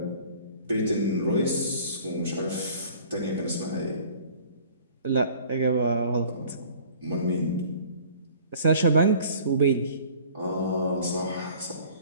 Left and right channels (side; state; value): both; inverted; correlation -0.50